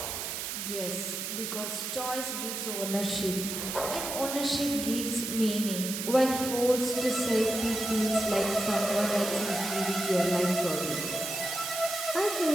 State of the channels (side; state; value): right; noise; hiss, 4 dB below the sound